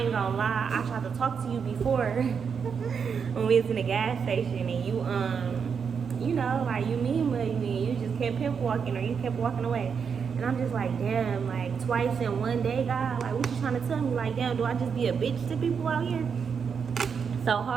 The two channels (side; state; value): left; quieter; 6.4 dB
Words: gonna lie, I tried to talk to you before when we was in the gas station, and you know, like, you mean mugged me, you just kept pimp walking, or you kept walking away. And I'm just like, damn, like, twice in one day, God, like, what you trying to tell me? Like, damn, do I just be a bitch to people out here? So